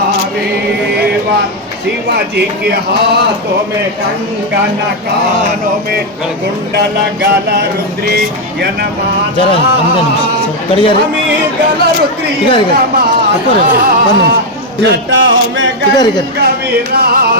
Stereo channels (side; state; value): both; normal; correlation 0.02